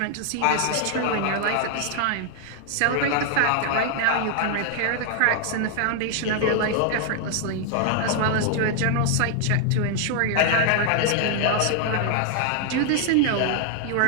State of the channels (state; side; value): different; both; correlation 0.00